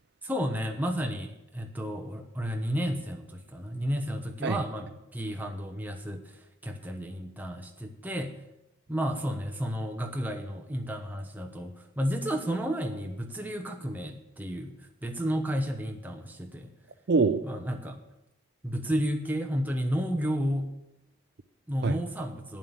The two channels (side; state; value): both; normal; correlation 0.75